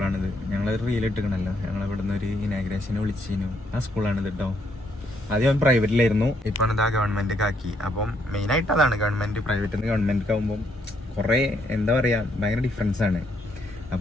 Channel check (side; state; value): both; normal; correlation 0.73